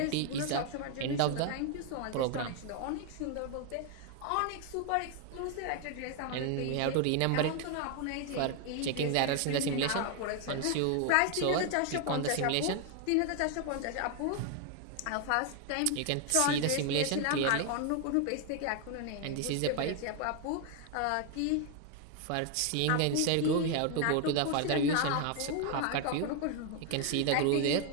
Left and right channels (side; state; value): both; different; correlation 0.01